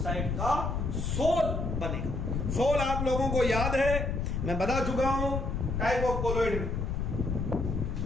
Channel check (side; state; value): left; noise; rumble, 1 dB below the sound